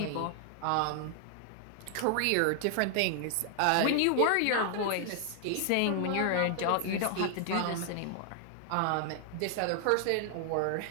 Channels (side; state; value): both; different; correlation 0.00